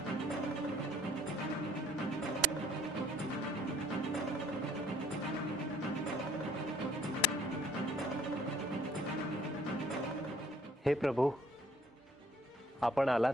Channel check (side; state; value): both; normal; correlation 0.58